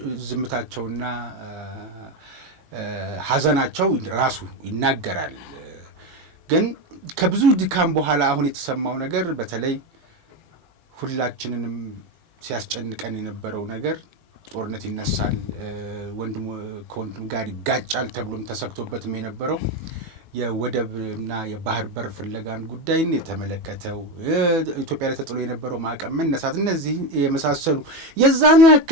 ዝምታቸውና ሐዘናቸው ራሱ ይናገራል። ግን ከብዙ ድካም በኋላ አሁን የተሰማው ነገር በተለይ ሁላችንንም ሲያስጨንቀን የነበረው ነገር ጦርነት ይነሳል፣ ወንድም ከወንድም ጋር ይጋጫል ተብሎም ተሰክቶበትም የነበረው የወደብና የባህር በር ፍለጋን ጉዳይን የተመለከተው ኢትዮጵያ ላይ ተጥሎ የነበረው ማዕቀብ መነሳት፣ እነዚህ የመሳሰሉ የዛኑ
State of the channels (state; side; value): late; left; 18 ms